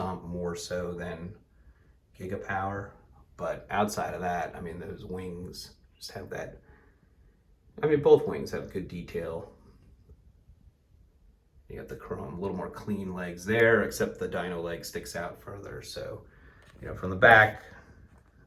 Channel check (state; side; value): identical; both; correlation 1.00